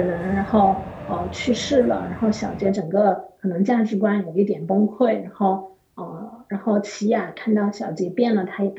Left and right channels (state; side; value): identical; both; correlation 1.00